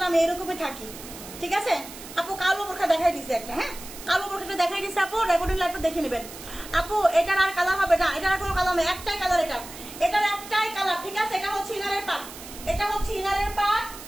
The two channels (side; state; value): right; noise; hiss, 14 dB below the sound